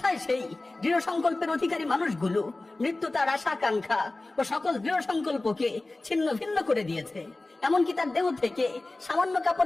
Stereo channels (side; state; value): right; quieter; 3.0 dB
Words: সেই দৃঢ় সংকল্পের অধিকারী মানুষগুলো? মৃত্যু তার আশা আকাঙ্ক্ষা ও সকল দৃঢ় সংকল্পকে ছিন্ন ভিন্ন করে দিয়েছে। এমনকি তার দেহ থেকে সামান্য